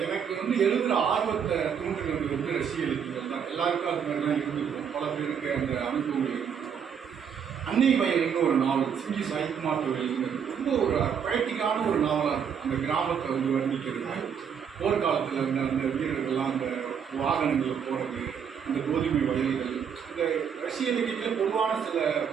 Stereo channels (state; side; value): quieter; left; 7.5 dB